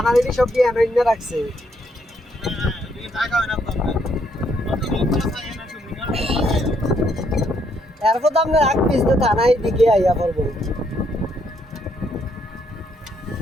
দিদি সব দিয়ে এনে রাখছে। এরপর তো আমরা এক পিস দিয়ে থানায় দিকে আইয়া পড়বো।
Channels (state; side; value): normal; both; correlation 0.73